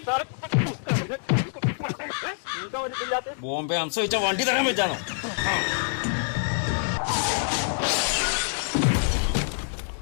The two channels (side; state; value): right; silent; digital silence